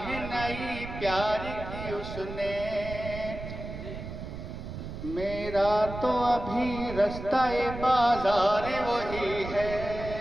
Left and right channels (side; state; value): right; noise; rumble, 9 dB below the sound